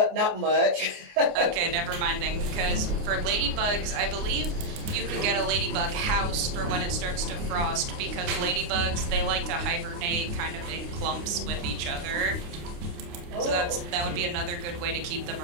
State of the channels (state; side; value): late; left; 29 ms